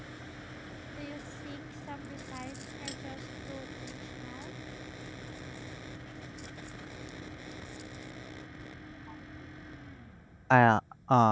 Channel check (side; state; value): both; identical; correlation 1.00